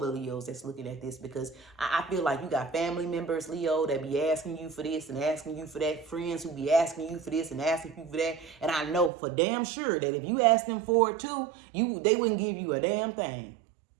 Leos that's looking at this, because I feel like you got family members, Leo, that be asking you for this and asking you for that. Friends who be asking you for this and asking you for that. And I know for damn sure that if you ask them for it too, they wouldn't give you a damn thing.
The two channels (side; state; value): left; drops out; at 9.1 s